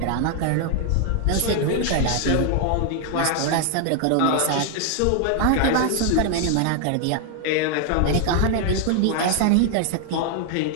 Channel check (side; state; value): both; different; correlation 0.00